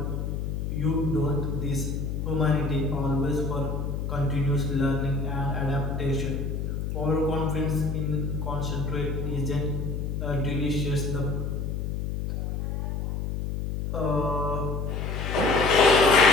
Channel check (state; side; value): noise; left; hum, 2 dB below the sound